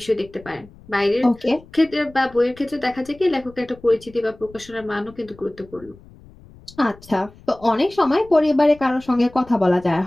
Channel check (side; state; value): left; noise; rumble, 23 dB below the sound